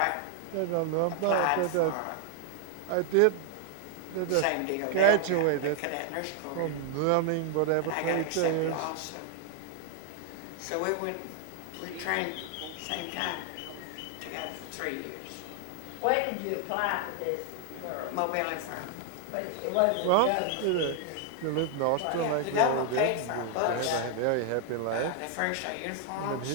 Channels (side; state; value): both; different; correlation 0.00